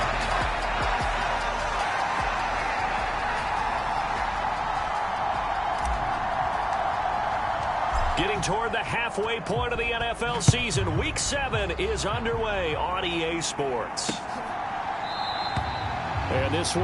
Getting toward the halfway point of the NFL season. Week 7 is underway on EA Sports. And this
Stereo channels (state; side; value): identical; both; correlation 1.00